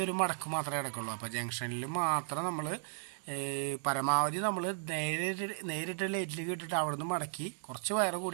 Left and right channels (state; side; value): silent; left; 54 dB below the other